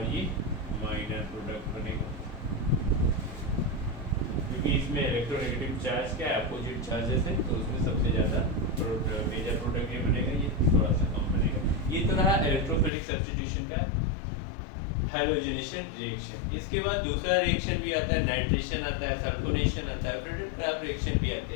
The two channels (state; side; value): drops out; right; at 12.9 s